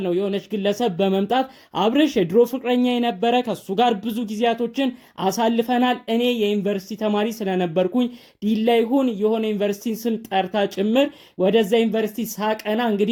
ነው የሆነች ግለሰብ በመምጣት አብርሽ የድሮ ፍቅረኛ የነበረ ከሱ ጋር ብዙ ጊዜያቶችን አሳልፈናል፣ እኔ የዩኒቨርሲቲ ተማሪ ስለነበርኩኝ ዲላ ይሁን የሆነ ዩኒቨርሲቲን ስም ጠርታ ጭምር ወደዛ ዩኒቨርሲቲ ሳቀና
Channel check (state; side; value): identical; both; correlation 1.00